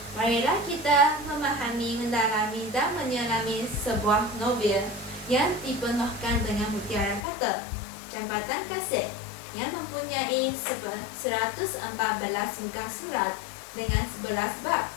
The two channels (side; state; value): right; drops out; at 7.2 s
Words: Marilah kita memahami, mendalami dan menyelami sebuah novel yang dipenuhkan dengan mutiara kata, Jambatan Kasih, yang mempunyai 114 muka surat dengan 11 bab